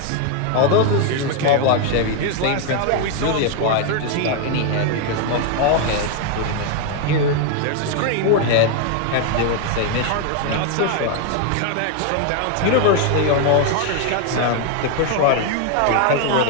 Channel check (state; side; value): different; both; correlation 0.01